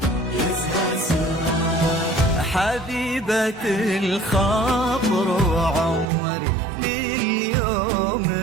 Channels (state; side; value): drops out; left; at 6.1 s